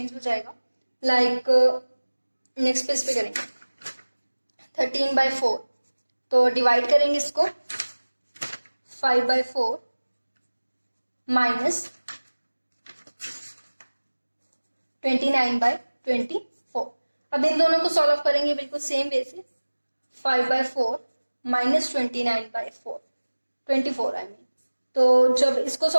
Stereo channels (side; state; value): both; inverted; correlation -1.00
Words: हो जाएगा। लाइक नेक्स्ट पेज पे करेंगे 13/4, तो डिवाइड करेंगे इसको 5/4 -29/24। अब इन दोनों को सॉल्व करेंगे बिल्कुल सेम वे से, 5/4 -29/4, 24 आई मीन। तो जब इसको